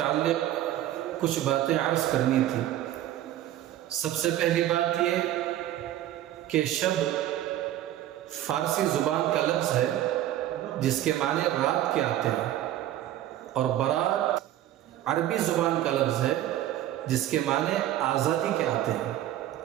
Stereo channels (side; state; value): left; quieter; 12.9 dB